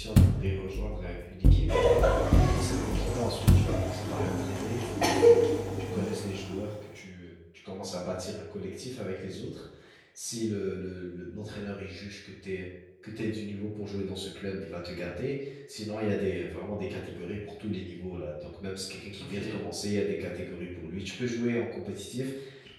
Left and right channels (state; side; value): identical; both; correlation 1.00